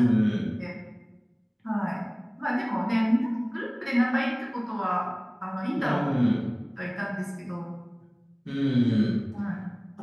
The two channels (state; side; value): identical; both; correlation 1.00